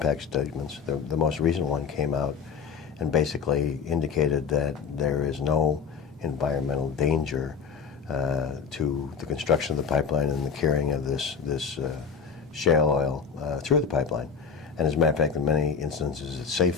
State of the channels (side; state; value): right; quieter; 6.2 dB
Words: statements. The most recent one came out and basically indicated that there is no environmental danger to the construction of the pipeline and the carrying of this shale oil through the pipeline. And as a matter of fact, in many instances, it's